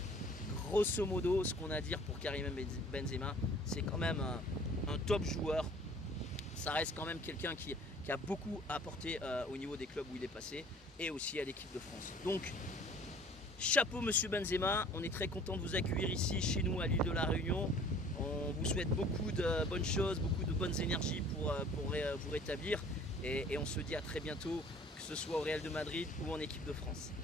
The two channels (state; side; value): normal; both; correlation 0.51